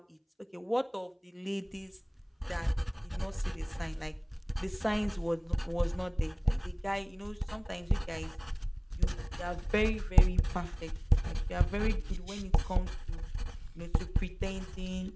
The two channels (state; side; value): identical; both; correlation 1.00